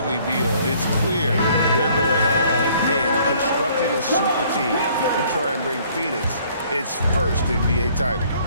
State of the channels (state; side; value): inverted; both; correlation -0.60